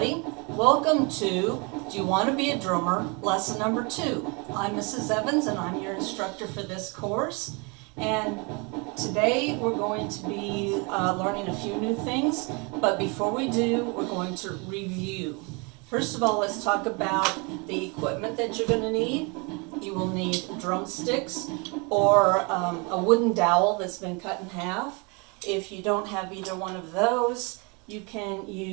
Welcome to Do You Want to Be a Drummer? Lesson number 2. I'm Mrs. Evans and I'm your instructor for this course. And today we're going to be learning a few new things. But before we do, we're going to review. First of all, let's talk about the equipment that you're going to need. You will need drumsticks or a wooden dowel that's been cut in half. If you don't have either one of those, you can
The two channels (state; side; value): quieter; left; 30.9 dB